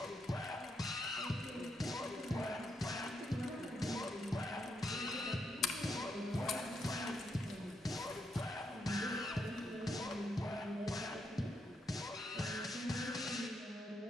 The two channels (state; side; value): normal; both; correlation 0.80